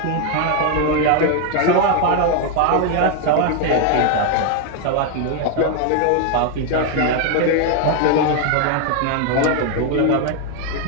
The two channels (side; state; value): both; different; correlation 0.01